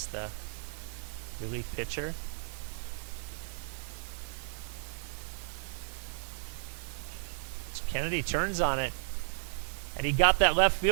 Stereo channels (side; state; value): left; silent; digital silence